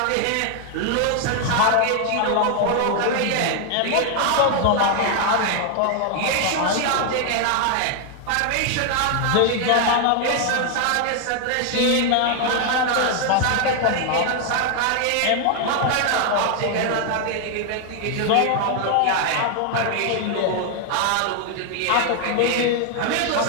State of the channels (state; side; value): different; both; correlation 0.00